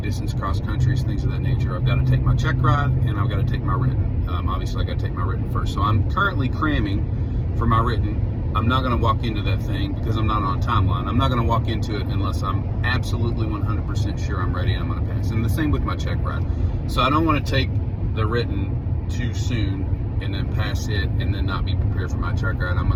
distance cross countries, things of that nature. I've got to take my check ride and I've got to take my written. Obviously I got to take my written first. So I'm currently cramming for my written. I'm not going to walk into that thing because I'm not on a timeline. I'm not going to walk into it unless I'm absolutely 100% sure I'm ready and I'm going to pass. And the same with my check ride. So I don't want to take the written too soon and then pass it and then not be prepared for my check ride.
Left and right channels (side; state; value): both; identical; correlation 1.00